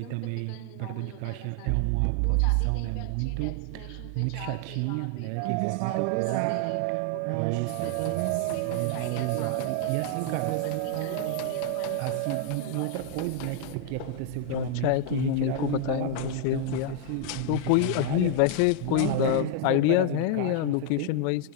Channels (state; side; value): different; both; correlation 0.00